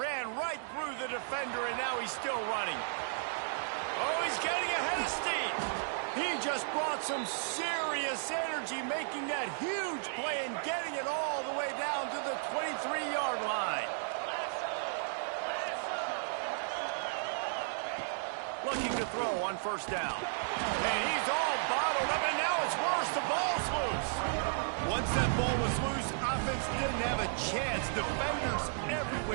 right through the defender, and now he's still running. Oh, he's getting ahead of steam. He just brought some serious energy, making that huge play and getting it all the way down to the 23-yard line. Looking to throw on first down. And he's all bottled up, and now it's worse. The ball's loose. Once that ball was loose, offense didn't have a chance. Defenders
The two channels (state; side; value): silent; left; digital silence